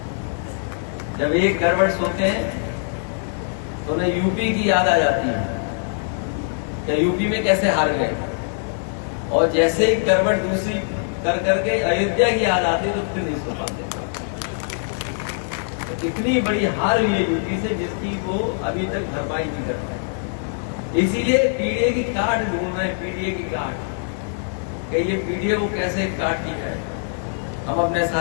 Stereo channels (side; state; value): right; silent; digital silence